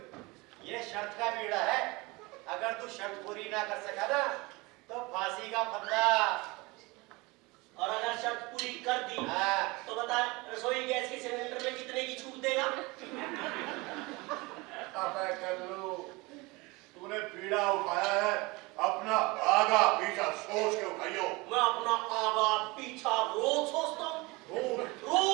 ये शर्त का बीड़ा है। अगर तू शर्त पूरी ना कर सका ना तो फांसी का फंदा। और अगर शर्त पूरी कर दी हाँ। तो बता रसोई गैस के सिलेंडर में कितने की छूट देगा? अबे कल्लू, तूने बीड़ा उठाया है, अपना आगा पीछा सोच के उठाइयो। मैं अपना आगा पीछा रोज सोचता हूँ, रोज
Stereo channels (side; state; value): left; quieter; 24.3 dB